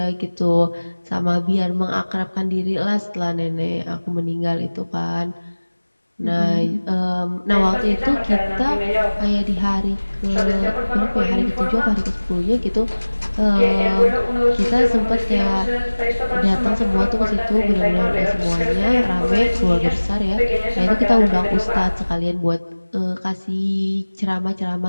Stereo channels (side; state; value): both; inverted; correlation -1.00